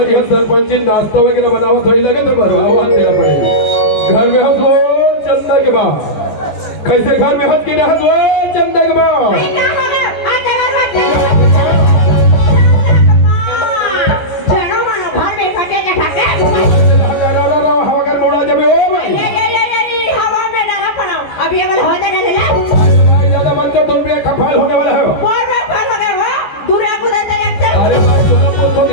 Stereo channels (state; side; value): late; right; 14 ms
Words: हमारी यहाँ सरपंची नाश्ता वगैरह बनाओ थोड़ी लगे तो भरवा देना पड़ेगा। घर में हंस वो चंदा के बाद कैसे घर में हंस की हंस वो चंदा के बाद खफाल होने वाला है। अरे